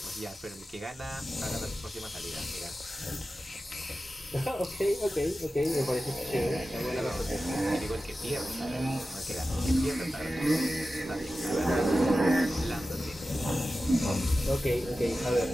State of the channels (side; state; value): both; normal; correlation 0.94